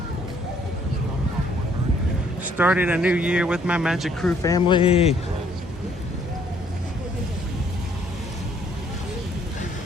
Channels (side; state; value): both; normal; correlation 0.64